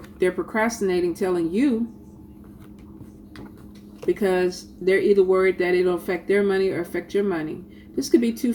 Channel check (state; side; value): identical; both; correlation 1.00